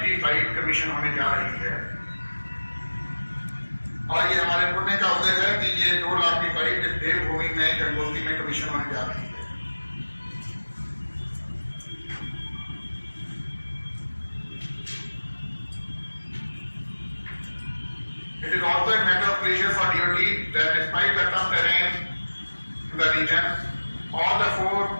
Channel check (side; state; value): both; inverted; correlation -1.00